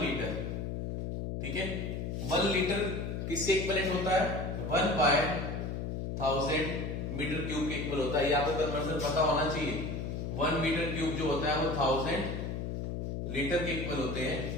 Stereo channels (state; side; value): noise; left; hum, 3 dB below the sound